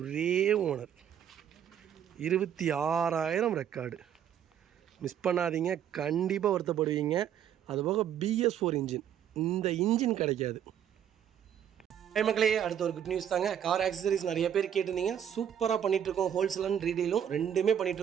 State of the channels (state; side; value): quieter; left; 9.4 dB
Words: ஓனர், 26,000 ரெக்கார்டு. மிஸ் பண்ணாதீங்க, கண்டிப்பாக வருத்தப்படுவீங்க. அதுபோக BS4 இன்ஜின், இந்த இன்ஜின் கிடைக்காது. மக்களே, அடுத்த ஒரு குட் நியூஸ் தாங்க. கார் ஆக்சசரிஸ் நிறைய பேர் கேட்டிருந்தீங்க. சூப்பராக பண்ணிகிட்ருக்கோம். ஹோல்சேல் அண்ட் ரீடெயிலும் ரெண்டுமே